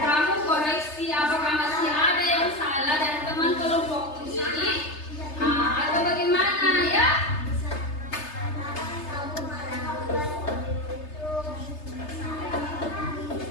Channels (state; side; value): late; right; 3.3 ms